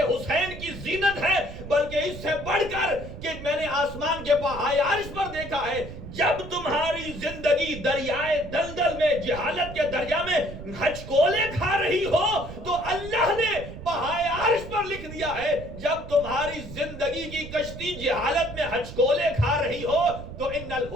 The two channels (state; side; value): noise; right; rumble, 12 dB below the sound